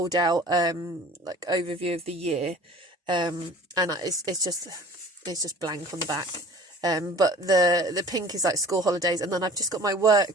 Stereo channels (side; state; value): both; normal; correlation 0.45